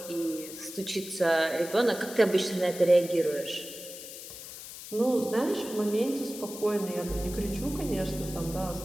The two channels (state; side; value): noise; left; hiss, 12 dB below the sound